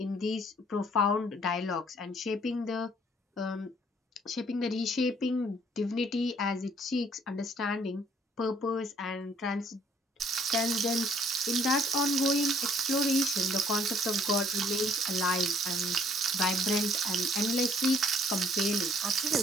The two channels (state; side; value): normal; both; correlation 0.62